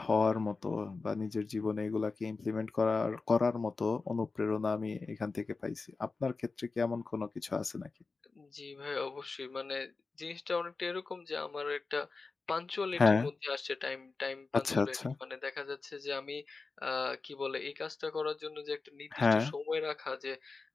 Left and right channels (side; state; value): right; quieter; 4.1 dB